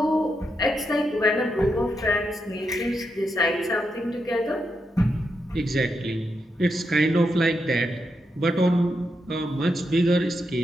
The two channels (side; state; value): both; normal; correlation 0.84